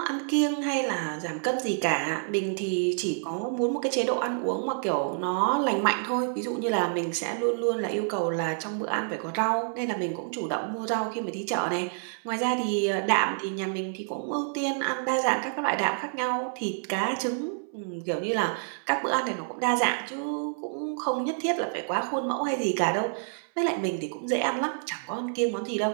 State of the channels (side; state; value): left; silent; 59 dB below the other